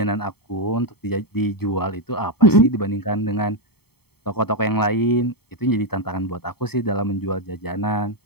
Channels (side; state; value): right; late; 0.96 ms